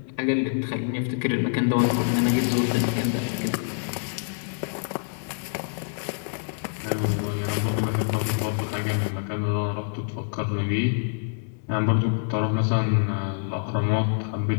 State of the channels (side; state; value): right; silent; 61 dB below the other